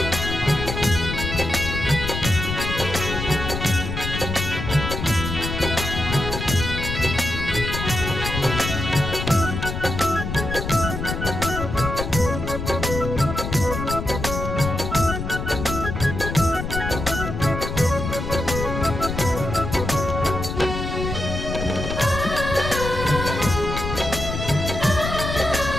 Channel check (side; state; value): left; noise; rumble, 4 dB below the sound